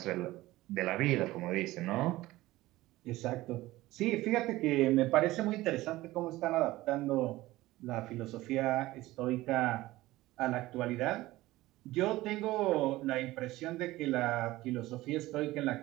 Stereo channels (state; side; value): quieter; left; 17.7 dB